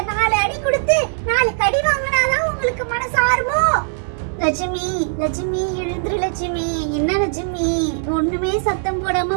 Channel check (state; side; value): silent; left; digital silence